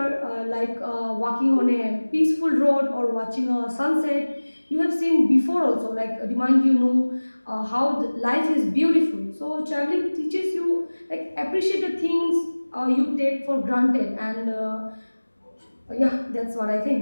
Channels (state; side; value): inverted; both; correlation -1.00